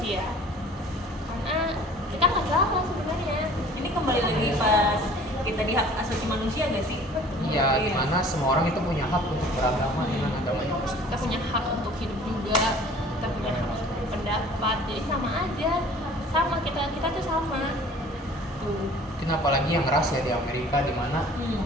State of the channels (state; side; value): normal; both; correlation 0.49